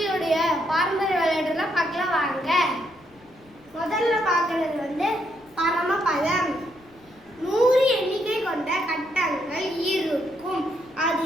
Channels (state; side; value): noise; left; rumble, 29 dB below the sound